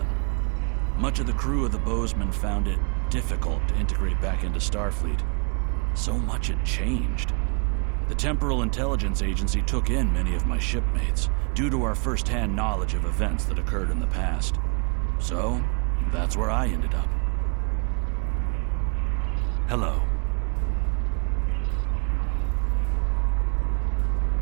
Much of the crew of the Bozeman found it difficult to integrate back into Starfleet. So much had changed. The Temporal Intelligence Agency took in many of my shipmates, due to our first-hand knowledge of events that occurred in the past. So, that's where I ended up. Hello.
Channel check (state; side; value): quieter; left; 36.2 dB